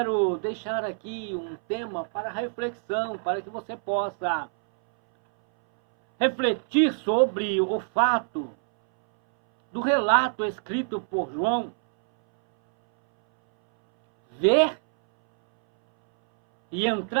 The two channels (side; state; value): left; silent; 61 dB below the other